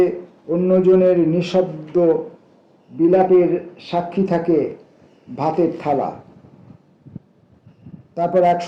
অন্যজনের নিঃশব্দ বিলাপের সাক্ষী থাকে ভাতের থালা। তারপর এক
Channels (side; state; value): both; identical; correlation 1.00